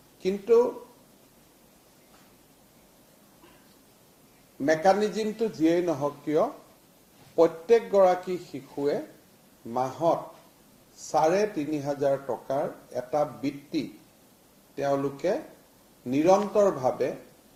কিন্তু মেকানিজমটো যিয়েই নহওক কিয় প্ৰত্যেকগৰাকী শিশুৱে মাহত ৩,৫০০ টকাৰ এটা বৃত্তি তেওঁলোকে নিৰন্তৰভাৱে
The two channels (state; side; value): identical; both; correlation 1.00